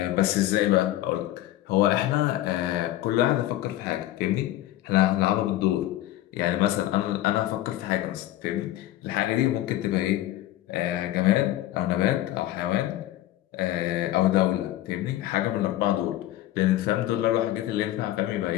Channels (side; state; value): right; quieter; 14.5 dB